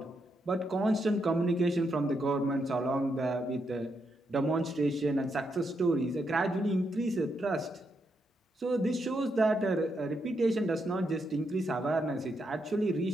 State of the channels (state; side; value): normal; both; correlation 0.81